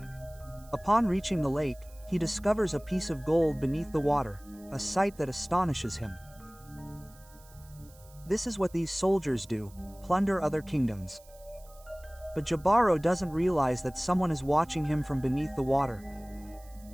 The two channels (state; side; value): noise; right; hiss, 25 dB below the sound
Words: Upon reaching the lake, he discovers a piece of gold beneath the water, a sight that astonishes him. This is what these soldiers do, plunder other kingdoms. But Jibaro doesn't realize that someone is watching him from beneath the water.